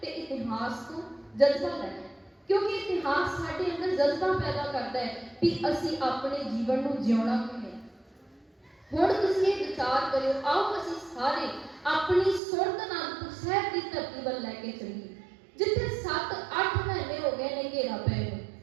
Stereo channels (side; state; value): left; drops out; at 12.4 s